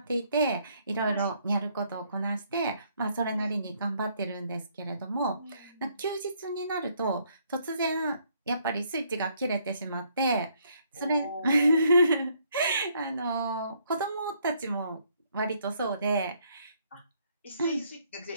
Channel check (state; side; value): inverted; both; correlation -0.68